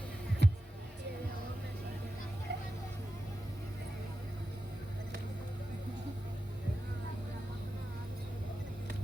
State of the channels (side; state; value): both; normal; correlation 0.91